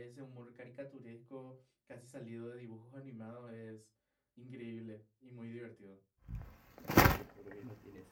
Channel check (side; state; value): both; identical; correlation 1.00